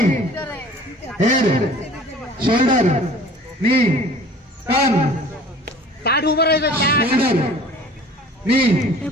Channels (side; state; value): both; normal; correlation 0.47